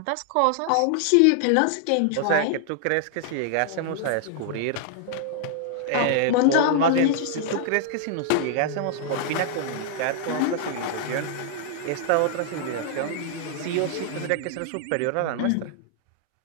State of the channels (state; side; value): different; both; correlation 0.00